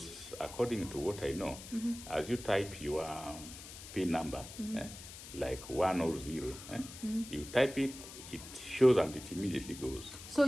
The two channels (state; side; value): noise; left; hiss, 13 dB below the sound